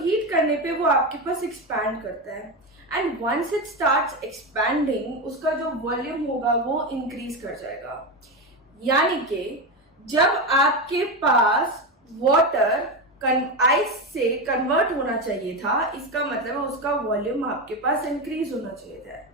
करने पे वो आपके पास एक्सपैंड करता है and once it starts expanding उसका जो वॉल्यूम होगा वो इंक्रीज कर जाएगा। यानी कि जब आपके पास वाटर आइस से कन्वर्ट होना चाहिए था, इसका मतलब है उसका वॉल्यूम आपके पास इंक्रीज होना चाहिए था।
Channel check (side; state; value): both; normal; correlation 0.15